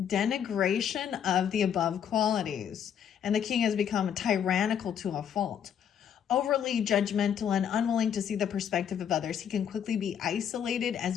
Denigration of the above qualities. And the king has become tyrannical to a fault. Overly judgmental and unwilling to see the perspective of others. He can quickly be isolated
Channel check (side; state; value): right; quieter; 8.7 dB